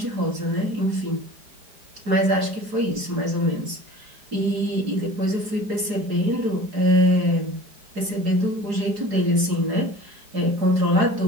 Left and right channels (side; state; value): left; late; 4.8 ms